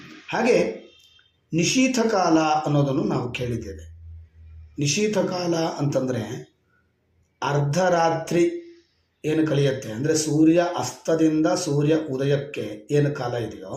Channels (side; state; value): both; identical; correlation 1.00